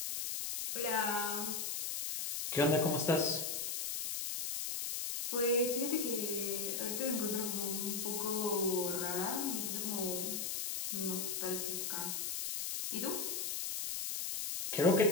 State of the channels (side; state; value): left; noise; hiss, 2 dB below the sound